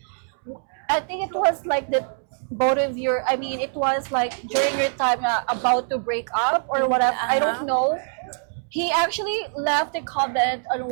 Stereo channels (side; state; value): left; silent; 63 dB below the other